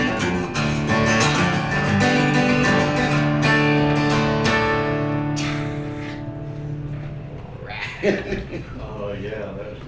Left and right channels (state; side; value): identical; both; correlation 1.00